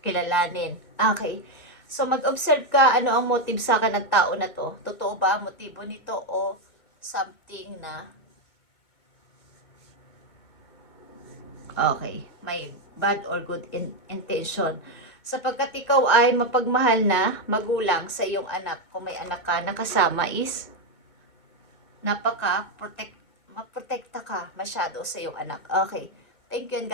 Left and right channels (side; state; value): right; late; 2.2 ms